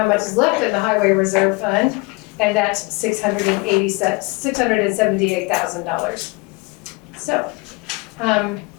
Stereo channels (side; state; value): right; quieter; 26.4 dB